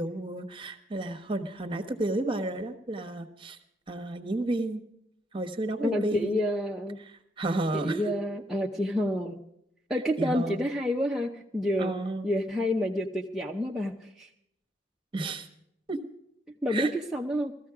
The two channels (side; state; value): both; normal; correlation 0.75